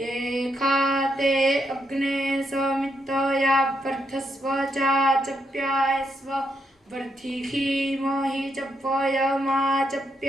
अग्ने समितया वर्धस्व चाचप्यायस्व वर्धिखीमहि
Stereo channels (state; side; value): normal; both; correlation 0.79